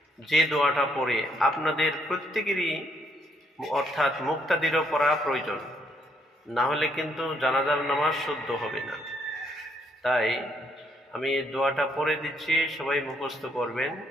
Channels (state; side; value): normal; both; correlation 0.71